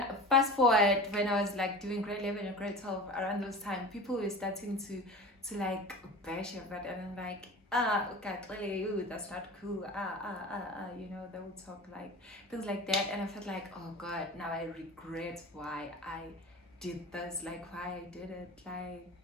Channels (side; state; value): both; normal; correlation 0.35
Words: fast forward, when I was like doing grade 11 and grade 12, around those time, people were starting to like bash it, but and I'm like, okay, really, ooh, that's not cool. You know, they would talk like things like that, and I felt like, oh god, now I regret why I did this, like why I did it,